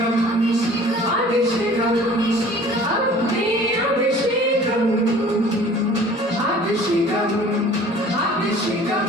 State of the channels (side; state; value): both; normal; correlation 0.49